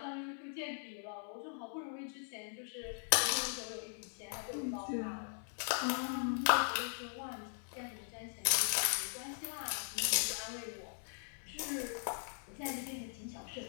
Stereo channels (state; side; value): silent; right; digital silence